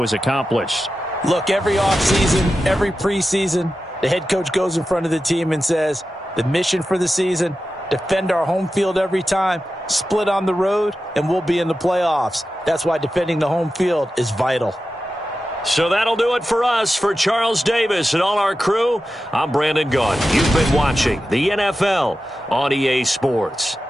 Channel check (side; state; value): both; normal; correlation 0.92